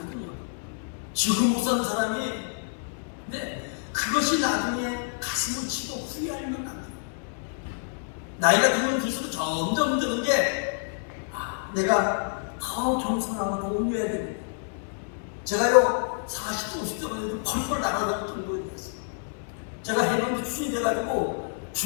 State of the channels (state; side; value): silent; right; digital silence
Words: 지금 못 사는 사람이, 근데 그것이 나중에 가슴을 치고 후회하면 안 돼요. 나이가 들면 들수록 점점 드는 게 내가 더 겸손하고 더 온유해야 됩니다. 제가요 40대 50대만 해도 펄펄 날아다닐 정도에 됐어요. 제가 해병대 출신이 돼가지고